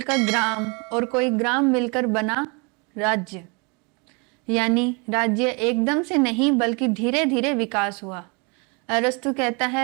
ग्राम और कोई ग्राम मिलकर बना राज्य। यानी राज्य एकदम से नहीं बल्कि धीरे धीरे विकास हुआ। अरस्तु कहता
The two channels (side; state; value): left; quieter; 31.4 dB